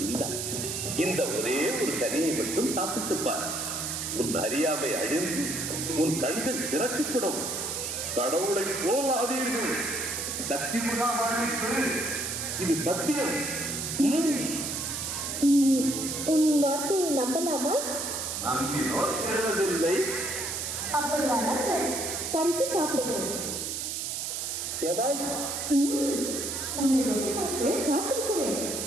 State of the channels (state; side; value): noise; right; hiss, 3 dB below the sound